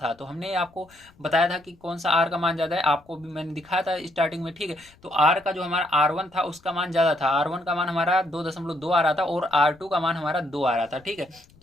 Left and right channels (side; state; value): left; noise; rumble, 29 dB below the sound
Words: तो हमने आपको बताया था कि कौन सा आर का मान ज्यादा है, आपको भी मैंने दिखाया था स्टार्टिंग में, ठीक है। तो आर का जो हमारा R1 था उसका मान ज्यादा था, R1 का मान हमारा 2.2 आ रहा था और R2 का मान हमारा 2 आ रहा था, ठीक है। तो